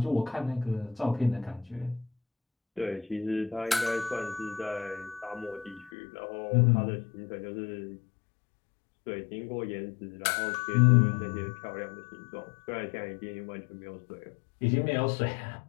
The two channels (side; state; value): right; drops out; at 5.9 s